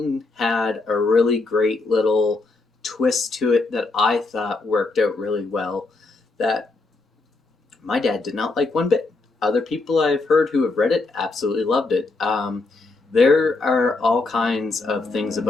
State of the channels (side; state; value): right; quieter; 3.5 dB